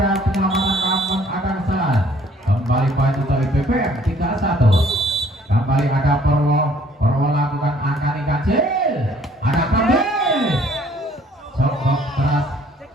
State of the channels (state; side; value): normal; both; correlation 0.59